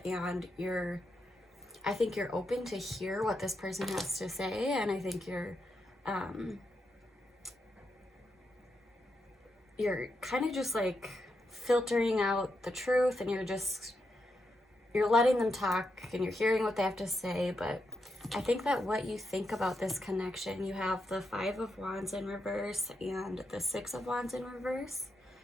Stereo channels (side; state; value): both; normal; correlation 0.83